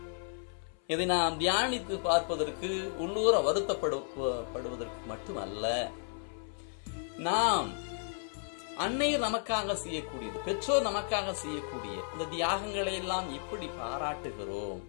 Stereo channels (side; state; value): right; silent; 55 dB below the other